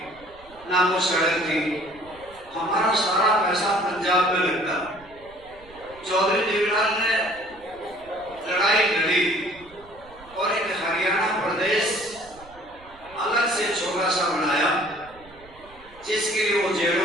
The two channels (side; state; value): right; noise; rumble, 24 dB below the sound